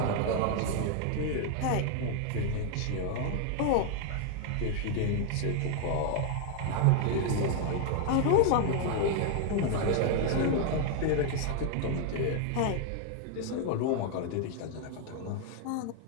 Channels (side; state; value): both; different; correlation 0.00